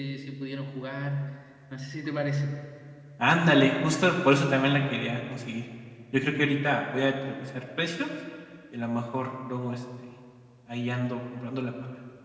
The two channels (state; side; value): identical; both; correlation 1.00